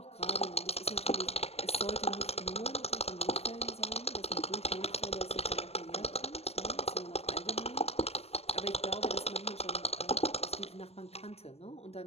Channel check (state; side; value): late; right; 0.30 ms